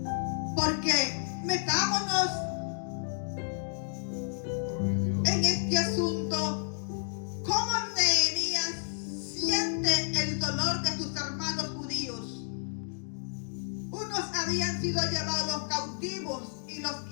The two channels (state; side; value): silent; right; digital silence